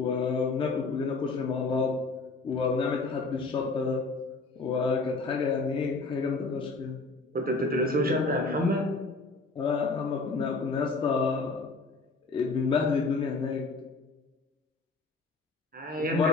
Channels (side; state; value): right; quieter; 3.6 dB